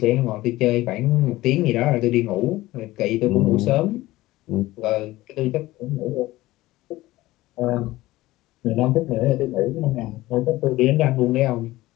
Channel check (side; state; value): right; quieter; 17.7 dB